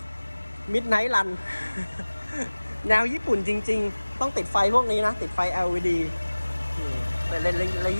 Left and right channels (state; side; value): inverted; both; correlation -1.00